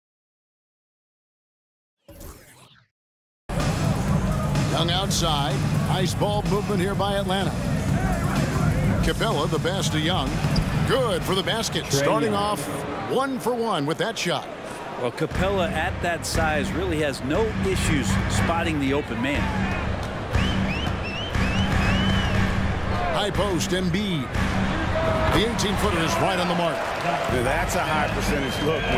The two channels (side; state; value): both; identical; correlation 1.00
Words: Young outside. Nice ball movement here by Atlanta. Capela, the pass to Young. Good for the basket. Trae Starting Young. off 1 for 1 with that shot. Well, Capela at that size really has no issues spotting the open man. High post, Embiid. The 18-footer is right on the mark. That's a high percentage look